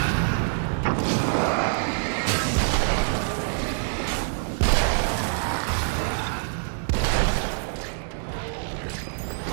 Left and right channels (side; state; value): left; silent; digital silence